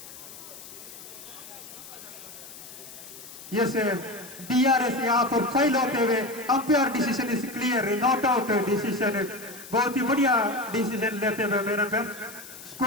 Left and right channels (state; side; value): noise; left; hiss, 15 dB below the sound